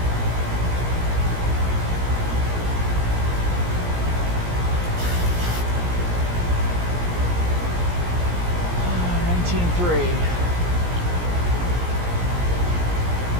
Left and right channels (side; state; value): left; late; 17 ms